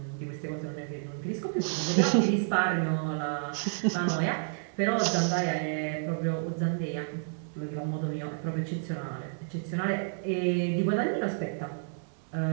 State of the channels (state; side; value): silent; left; digital silence